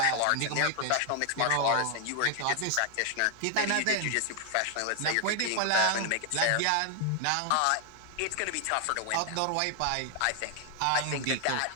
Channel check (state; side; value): different; both; correlation 0.00